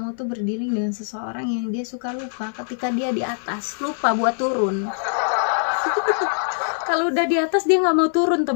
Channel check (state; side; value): silent; right; 57 dB below the other